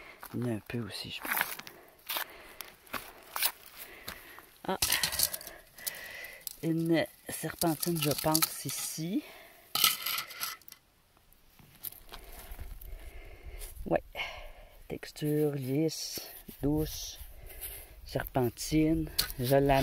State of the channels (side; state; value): both; identical; correlation 1.00